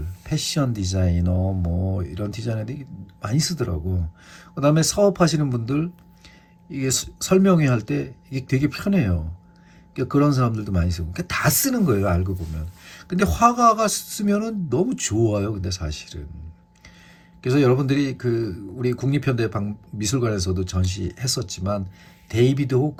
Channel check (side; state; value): both; identical; correlation 1.00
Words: 패션 디자이너, 뭐 이런 디자이너들이 많이 쓰더라고. 그 다음에 사업하시는 분들, 이게 설명회 할 때 이게 되게 편해요. 그러니까 그런 사람들도 많이 쓰고. 그러니까 다 쓰는 거예요, 알고 보면. 근데 화가가 쓰면은 너무 좋아요, 근데 사실은. 그래서 여러분들이 우리 국립현대 미술관에서도 전시했었지만, 데이비드